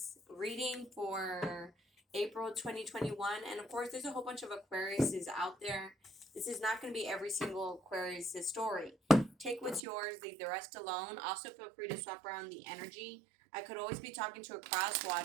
reading for April 2021, and of course there's a whole bunch of Aquariuses out there. This is not going to be every single Aquarius' story. Take what's yours, leave the rest alone. Also feel free to swap around the energy. I could always be talking to a cross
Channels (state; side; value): drops out; left; at 9.8 s